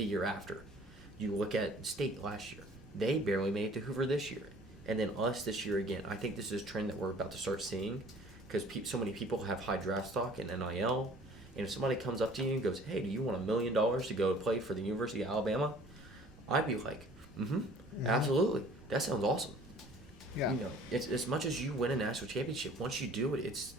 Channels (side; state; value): right; noise; rumble, 22 dB below the sound